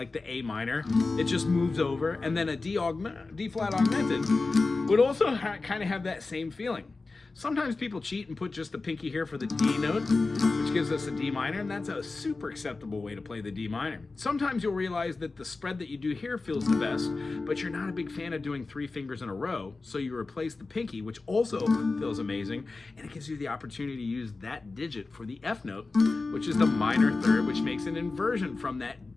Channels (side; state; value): right; quieter; 3.7 dB